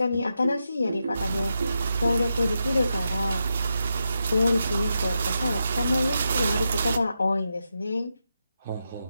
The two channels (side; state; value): both; inverted; correlation -0.86